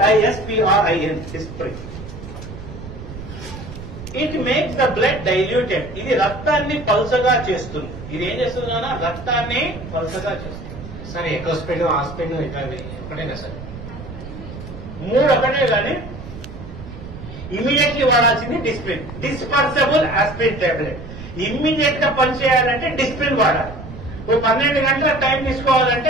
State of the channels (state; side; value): noise; right; rumble, 12 dB below the sound